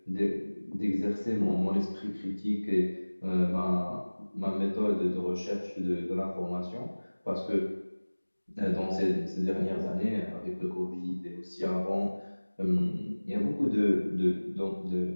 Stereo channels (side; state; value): both; inverted; correlation -1.00